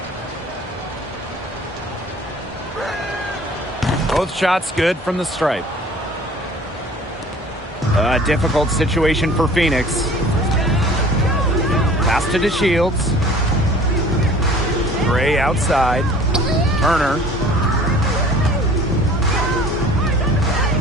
Both shots good from the stripe. A difficult situation for Phoenix. Pass to DeShields. Gray outside. Turner.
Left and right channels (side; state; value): both; normal; correlation 0.48